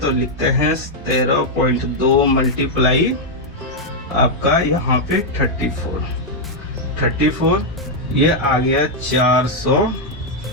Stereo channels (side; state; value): both; normal; correlation -0.02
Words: लिखते हैं 13.2 मल्टीप्लाई आपका यहाँ पे 34, ये आ गया